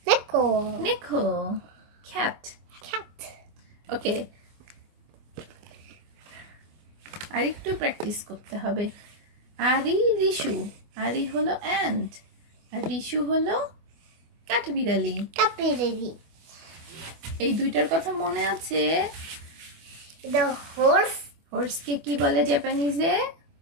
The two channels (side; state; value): left; late; 24 ms